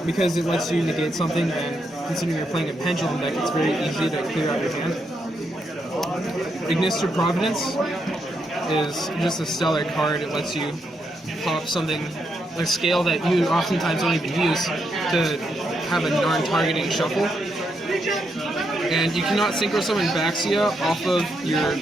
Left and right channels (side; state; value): both; normal; correlation 0.80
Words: because it lets you negate something, and considering you're playing a Pendulum deck, it's very easy to clear out your hand. Ignister Providence is just a stellar card. It lets you pop something, a scale that you oftentimes don't even use, to have a non-targeting shuffle. And you cannot synchro summon Baxia off of your